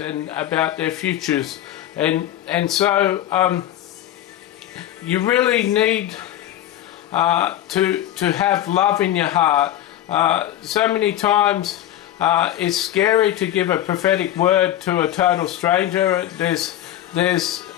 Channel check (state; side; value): quieter; right; 12.6 dB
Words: about their futures. And so you really need to have love in your heart. So many times it's scary to give a prophetic word to a total stranger. There's